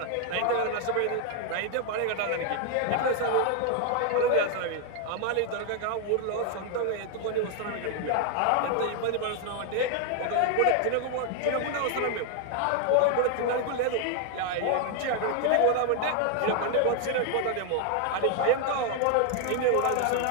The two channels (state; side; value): different; both; correlation 0.00